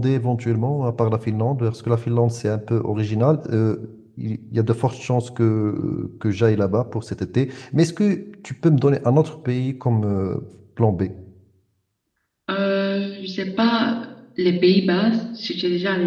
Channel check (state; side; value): identical; both; correlation 1.00